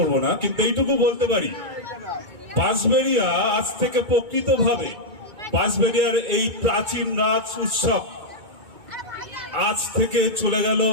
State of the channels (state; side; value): late; left; 2.2 ms